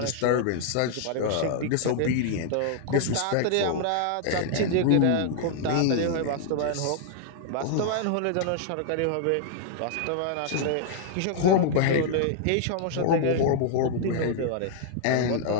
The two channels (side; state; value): both; different; correlation 0.00